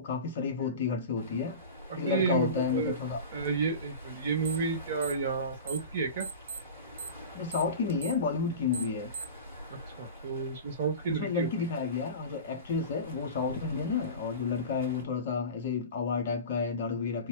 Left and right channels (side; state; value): both; inverted; correlation -0.32